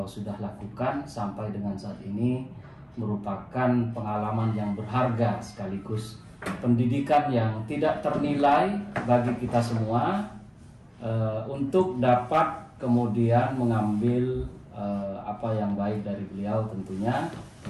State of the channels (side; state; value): both; identical; correlation 1.00